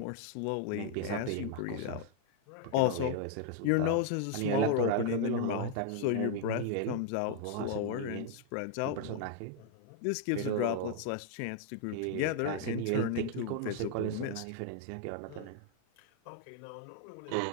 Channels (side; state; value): both; different; correlation 0.00